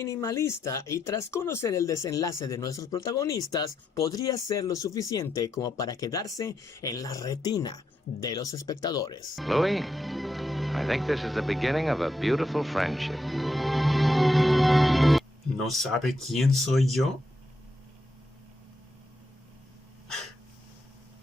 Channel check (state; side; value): normal; both; correlation 0.81